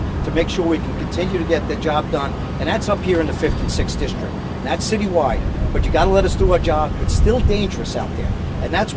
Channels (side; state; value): both; identical; correlation 1.00